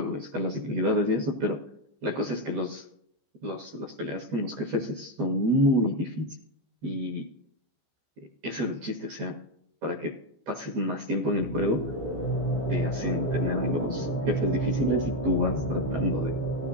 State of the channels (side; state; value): left; late; 15 ms